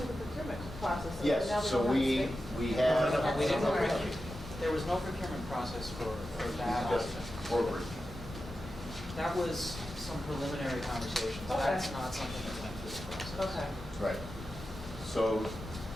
the procurement process. and now yes, so don't we have to we have. No, we didn't. Right. There was no procurement process for that. Forward. That was some preliminary conversations. Okay. That's not something that went through the process. Okay. Right. So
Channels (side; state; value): both; normal; correlation 0.91